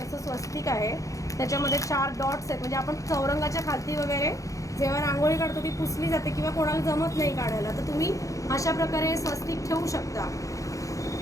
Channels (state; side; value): late; right; 0.16 ms